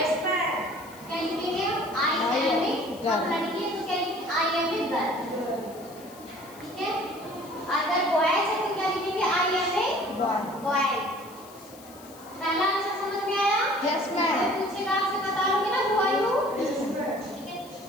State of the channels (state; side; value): noise; left; hiss, 21 dB below the sound